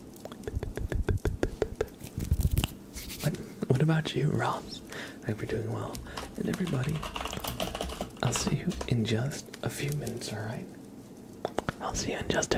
What about you, Ross? I hope you're doing well. And everybody, I'll see you in just a few minutes, alright? I'll see you in just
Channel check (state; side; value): identical; both; correlation 1.00